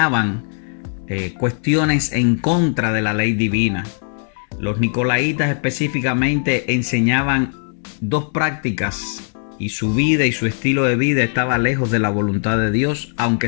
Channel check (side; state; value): right; silent; 63 dB below the other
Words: cuestiones en contra de la ley divina. Los Nicolaitas específicamente enseñaban dos prácticas y su vida y su estilo de vida estaba lejos de la voluntad de Dios,